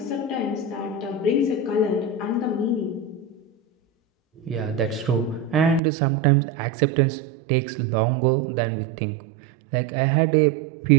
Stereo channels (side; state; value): left; drops out; at 5.8 s